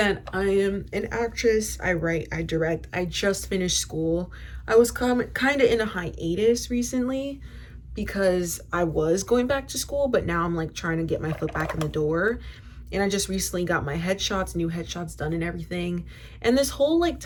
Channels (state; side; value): identical; both; correlation 1.00